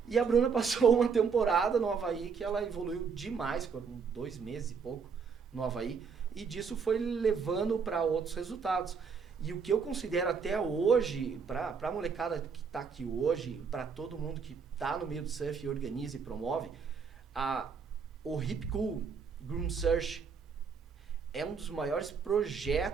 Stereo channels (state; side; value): quieter; left; 5.8 dB